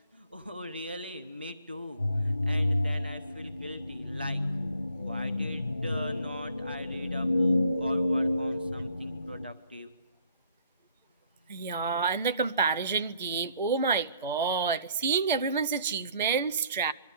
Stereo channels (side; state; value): both; inverted; correlation -0.62